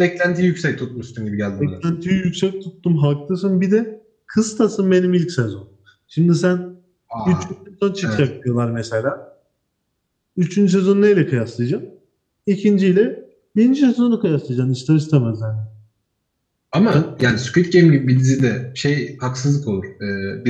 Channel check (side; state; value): both; identical; correlation 1.00